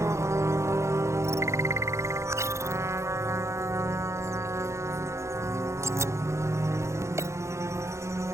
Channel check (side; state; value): left; late; 0.14 ms